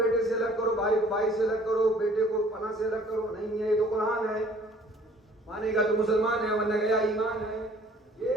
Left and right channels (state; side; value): normal; both; correlation 0.55